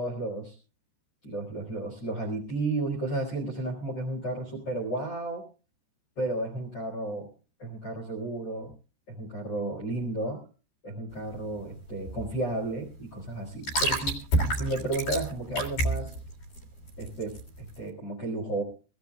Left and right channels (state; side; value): late; right; 13 ms